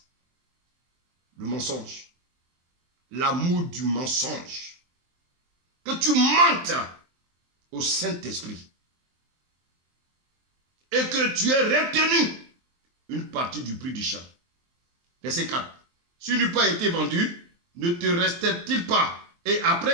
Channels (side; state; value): left; late; 23 ms